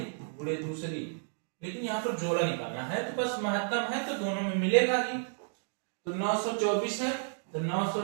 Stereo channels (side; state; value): left; silent; digital silence